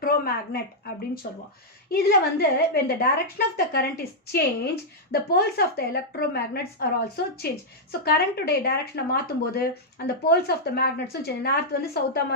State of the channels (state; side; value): normal; both; correlation -0.06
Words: அப்படின்னு சொல்லுவோம். இதில் வந்து when the direction of the current is changed, the poles of the electromagnets are also changed. So கரண்ட்டுடைய டைரக்ஷனை மாற்றும் போது அந்த போல்ஸ் ஆஃப் த மேக்னெட்ஸும் சேஞ்ச், நார்த் வந்து சவுத்தாக